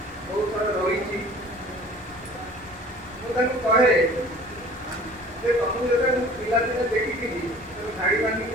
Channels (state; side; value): normal; both; correlation 0.47